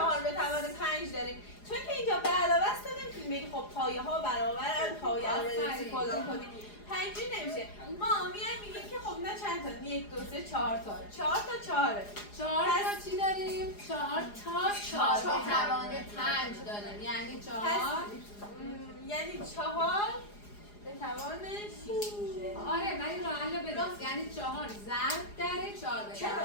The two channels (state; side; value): late; right; 4.9 ms